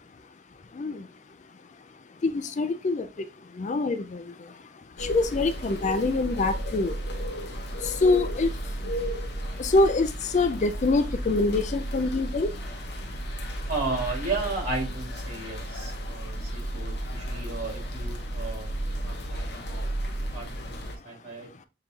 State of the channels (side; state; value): both; normal; correlation 0.51